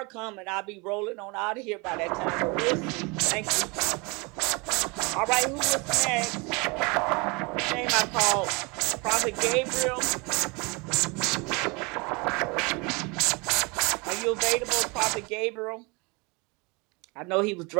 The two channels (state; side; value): quieter; left; 28.4 dB